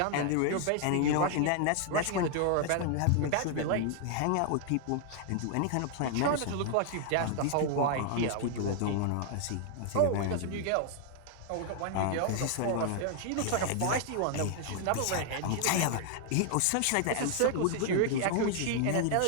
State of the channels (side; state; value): both; different; correlation 0.00